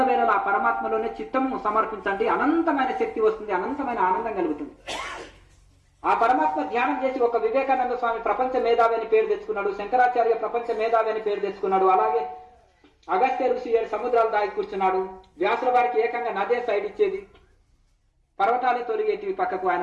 ఆ పరమాత్మలోనే చిత్తము సమర్పించండి, అనంతమైన శక్తి వస్తుంది, అనంతమైన ఆనందం కలుగుతుంది. ఆ పరమాత్మ ధ్యానం చేసి ఒక వివేకానంద స్వామి ప్రపంచ మేధావి అని పేరు తెచ్చుకున్నాడు, శంకరాచార్య ప్రపంచ మేధావి అని పేరు తెచ్చుకున్నాడు, అలాగే అగస్త్య ఋషి 7 సముద్రాలు దాగి కూర్చున్నాడు, వ్యాసుల వారికి ఏకంగా నదే సైడ్ ఇచ్చేది, పర్వతాలే తొలిగేటివి పక్కకు ఆయన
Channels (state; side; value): identical; both; correlation 1.00